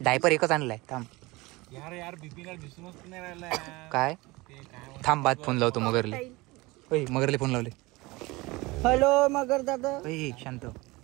डायपर एकच आणलाय. थांब यार बिपिनला दिसूनच नाही राहिला. काय थांब, बाद फोन लावतो मगरले. मगरले फोन लावले. हॅलो मगर दादा. शांत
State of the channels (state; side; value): quieter; left; 22.4 dB